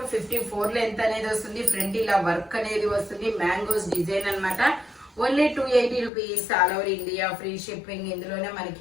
54 లెంత్ అనేది వస్తుంది. ఫ్రంట్ ఇలా వర్క్ అనేది వస్తుంది. మ్యాంగోస్ డిజైన్ అన్నమాట. Only 280 rupees all over India, free shipping. ఇందులోనే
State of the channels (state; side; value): drops out; right; at 6.1 s